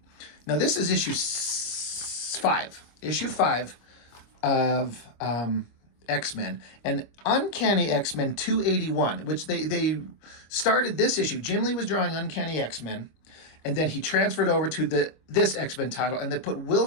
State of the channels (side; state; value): right; late; 25 ms